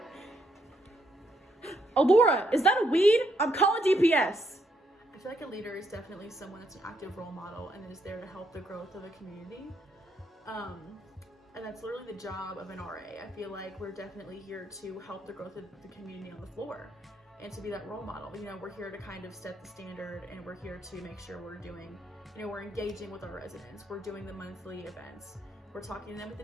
Oh, Laura, is that a weed? I'm calling DPS. I feel like a leader is definitely someone that's an active role model and is there to help the growth of a community. And that's literally the job of an RA. I feel like we're definitely here to help the growth of the community on the floor and to be that role model. You know, we're here to kind of set the standard, and we're here to make sure we're doing, you know, we're engaging with our residents. We're doing the monthly events. We're talking to them at the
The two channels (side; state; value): both; normal; correlation 0.74